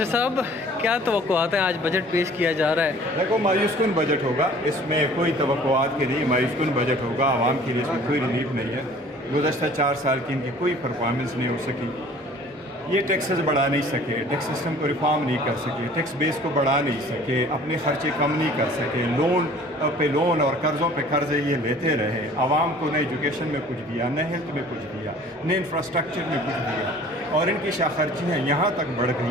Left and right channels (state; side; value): normal; both; correlation 0.49